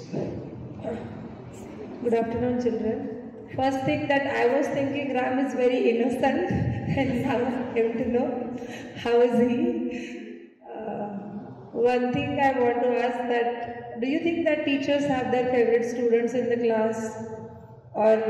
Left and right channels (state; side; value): identical; both; correlation 1.00